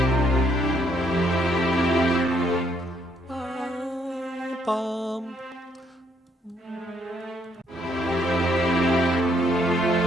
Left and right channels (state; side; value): normal; both; correlation 0.71